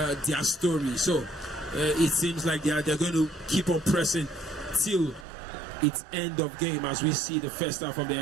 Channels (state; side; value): drops out; left; at 5.2 s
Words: their story. So it seems like they're going to keep on pressing till it's end of game as we see the first half of the